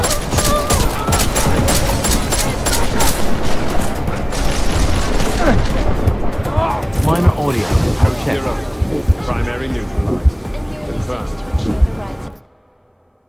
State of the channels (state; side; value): identical; both; correlation 1.00